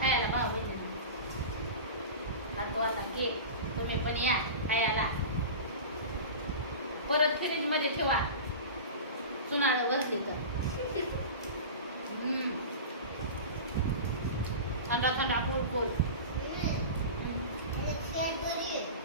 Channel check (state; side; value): inverted; both; correlation -0.30